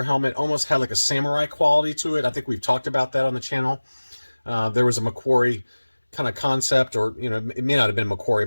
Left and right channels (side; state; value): both; inverted; correlation -1.00